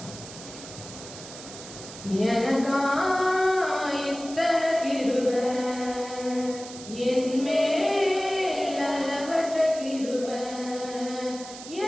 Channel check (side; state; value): right; noise; hiss, 14 dB below the sound